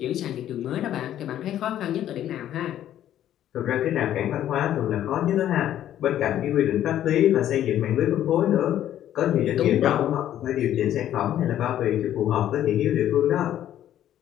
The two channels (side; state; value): right; quieter; 11.6 dB